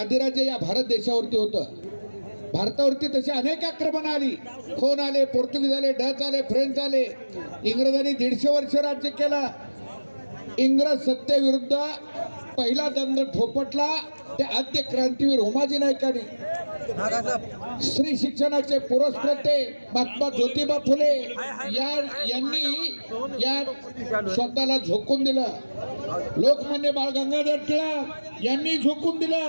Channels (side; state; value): both; inverted; correlation -1.00